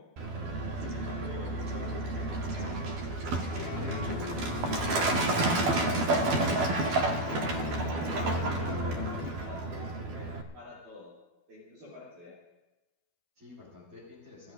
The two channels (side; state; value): left; late; 12 ms